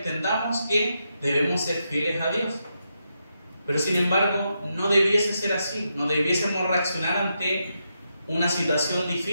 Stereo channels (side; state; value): both; inverted; correlation -0.83